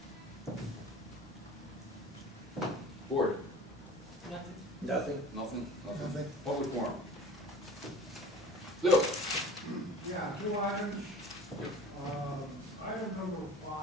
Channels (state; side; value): normal; both; correlation 0.41